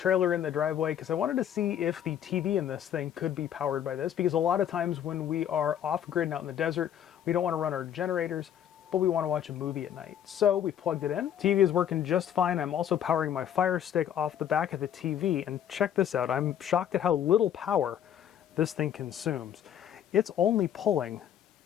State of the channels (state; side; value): quieter; right; 9.9 dB